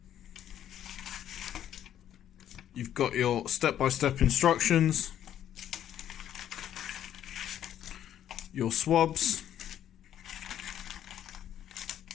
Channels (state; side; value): quieter; right; 10.7 dB